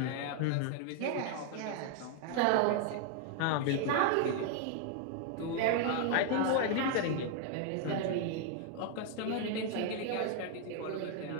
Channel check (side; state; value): both; different; correlation 0.00